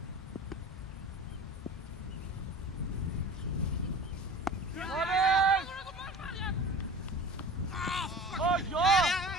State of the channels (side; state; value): both; normal; correlation 0.38